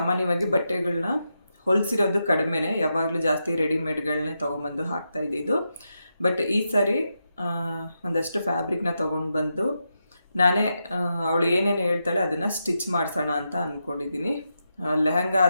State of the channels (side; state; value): both; inverted; correlation -0.86